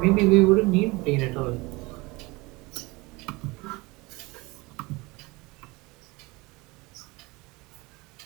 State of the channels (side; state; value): left; quieter; 23.9 dB